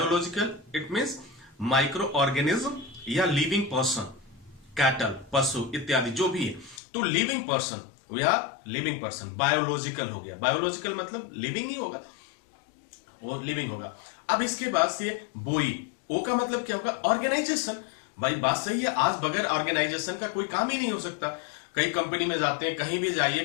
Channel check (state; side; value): drops out; right; at 6.8 s